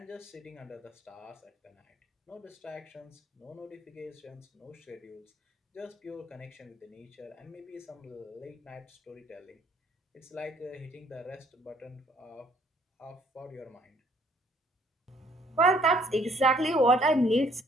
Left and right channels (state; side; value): normal; both; correlation 0.62